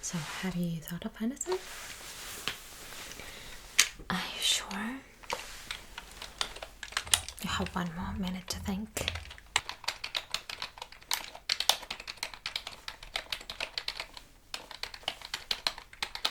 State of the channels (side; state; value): both; identical; correlation 1.00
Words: So, have you thought of anything? Are you sure? You have 1 more minute to think.